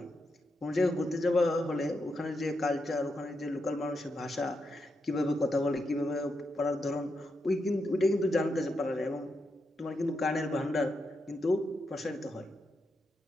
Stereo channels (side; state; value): both; normal; correlation 0.84